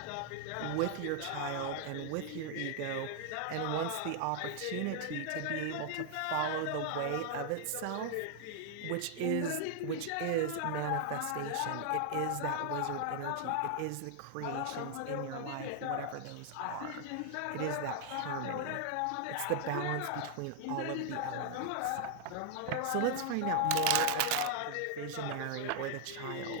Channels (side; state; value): both; different; correlation 0.00